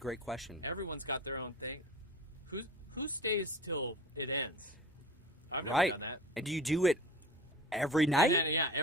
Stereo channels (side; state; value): both; normal; correlation 0.37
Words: question. Everyone's got their own thing. Who stays till it ends? I've never Right. done that. And do you do it every night? Yeah,